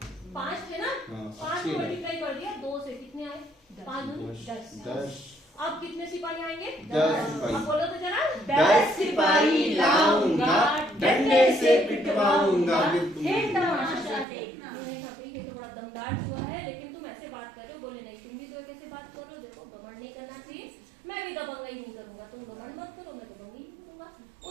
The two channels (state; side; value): drops out; left; at 14.2 s